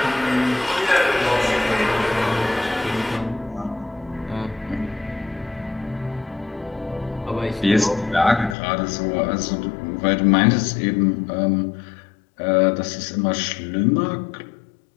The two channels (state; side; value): drops out; right; at 8.6 s